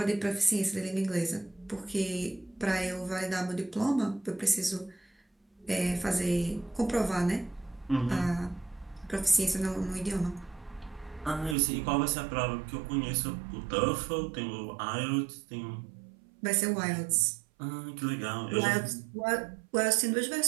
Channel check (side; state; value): left; drops out; at 11.6 s